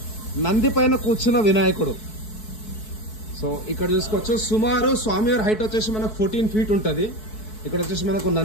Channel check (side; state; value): right; late; 4.6 ms